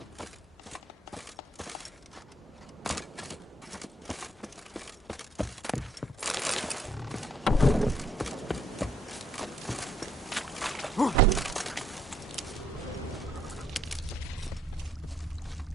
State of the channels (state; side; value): normal; both; correlation 0.68